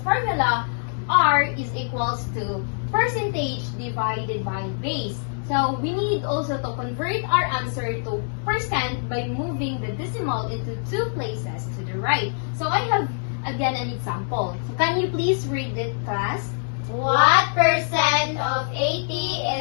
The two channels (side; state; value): right; silent; digital silence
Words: R is equals to percentage divided by base. So we need also to convert our answer to percent by moving the decimal into two places to the right. So I have again an example. So can you please read it, class? What percent of 80